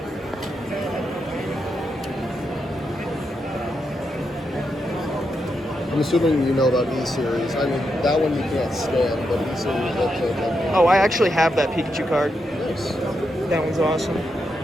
I'm assuming you know about E-Series. I mean, that one you can't stand, but E-Series, that's okay. Oh, I actually have that Pikachu card. Nice. That one's awesome.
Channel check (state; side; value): normal; both; correlation 0.84